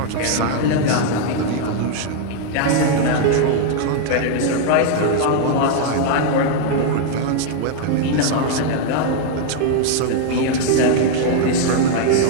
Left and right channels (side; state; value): both; different; correlation 0.00